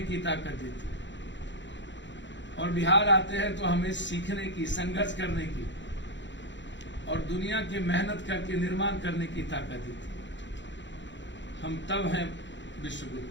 की ताकत देती है। और बिहार आते हैं तो हमें सीखने की, संघर्ष करने की और दुनिया की मेहनत करके निर्माण करने की ताकत दी थी। हम तब हैं विश्वगुरु।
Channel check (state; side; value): late; right; 0.53 ms